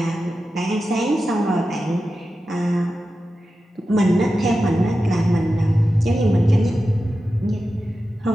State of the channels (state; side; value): normal; both; correlation 0.92